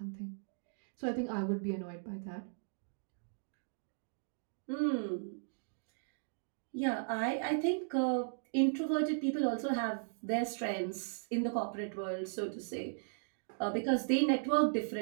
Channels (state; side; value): silent; left; digital silence